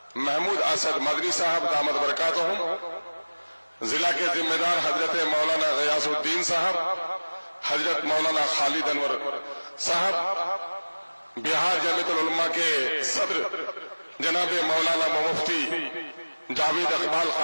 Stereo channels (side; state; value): both; inverted; correlation -1.00